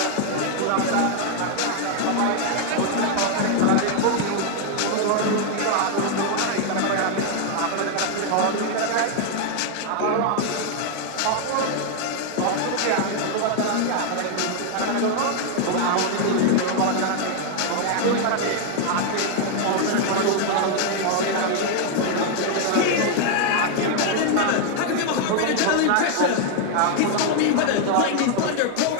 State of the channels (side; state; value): both; different; correlation 0.00